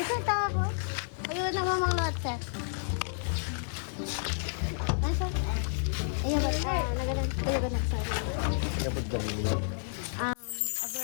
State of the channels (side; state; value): right; silent; digital silence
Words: tawa ko? Ayun na mamang lot, sir. Nasaan? Ayun ba? Nagalan. Ayun ba nagsari? Kapag dami